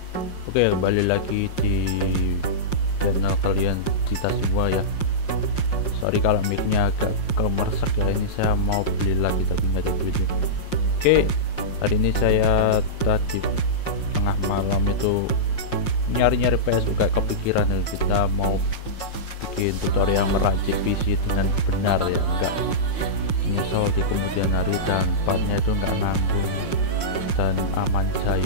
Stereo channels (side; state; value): right; late; 5.6 ms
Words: kembali lagi di channel kalian kita semua ya. Sorry kalau mic-nya agak kemersek ya, ini saya mau beli lagi tapi nggak ada duitnya. Oke, hari ini saya tadi tengah malam itu nyari-nyari PS, kayak kepikiran kita mau bikin tutorial meracik PC dengan benar ya, enggak nyesel di kemudian hari dan partnya itu enggak nanggung dan aman